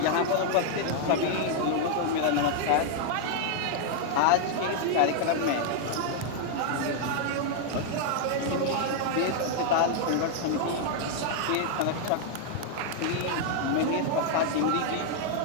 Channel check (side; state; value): both; different; correlation 0.00